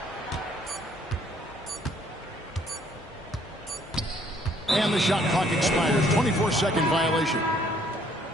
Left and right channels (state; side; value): normal; both; correlation 0.63